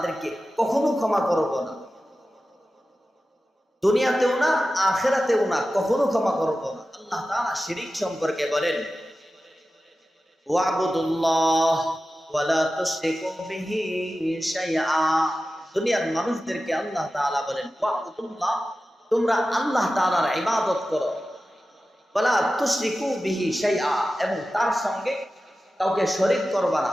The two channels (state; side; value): normal; both; correlation 0.94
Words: কখনো ক্ষমা করব না, দুনিয়াতেও না, আখিরাতেও না, কখনো ক্ষমা করব না। আল্লাহ তাআলা শিরিক সম্পর্কে বলেন, ওয়াবুদুল্লাহ ওয়ালা তুশরিকু বিহি শাইআ। দুনিয়ার মানুষদেরকে আল্লাহ তাআলা বলেন, ওয়াবুদুল্লাহ, তোমরা আল্লাহ তাআলার ইবাদত করো, ওয়ালা তুশরিকু বিহি শাইআ, এবং তার সঙ্গে কাউকে শরীক করবা না,